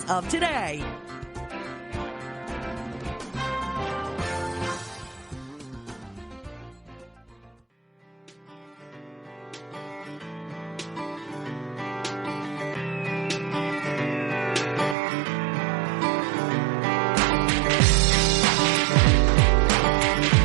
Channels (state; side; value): drops out; left; at 15.0 s